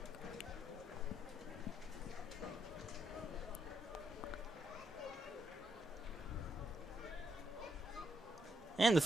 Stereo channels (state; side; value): normal; both; correlation 0.79